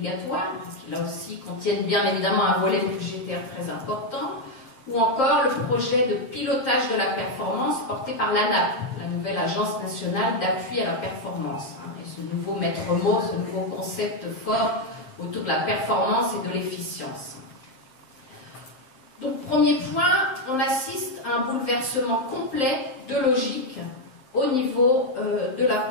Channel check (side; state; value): right; late; 7.6 ms